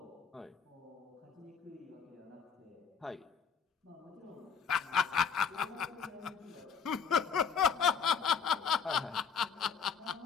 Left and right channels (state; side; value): quieter; right; 6.5 dB